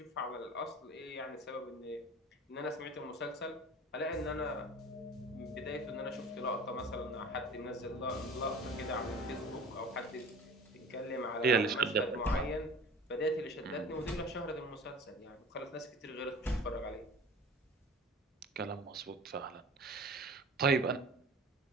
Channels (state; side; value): normal; both; correlation 0.41